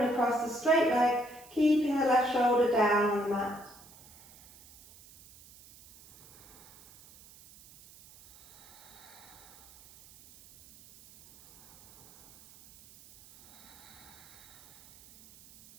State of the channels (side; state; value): right; noise; hiss, 23 dB below the sound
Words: across the straight leg, keeping the left shoulder down on the mat.